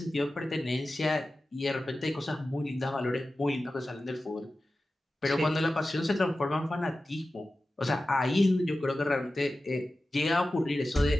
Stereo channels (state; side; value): normal; both; correlation 0.94